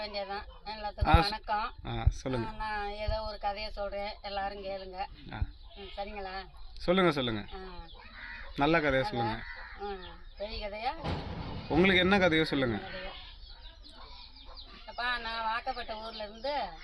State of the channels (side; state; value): both; identical; correlation 1.00